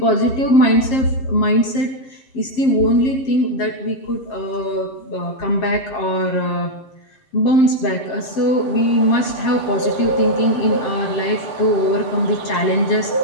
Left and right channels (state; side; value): late; right; 7.5 ms